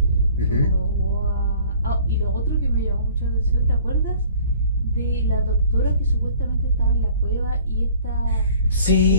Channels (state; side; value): inverted; both; correlation -0.53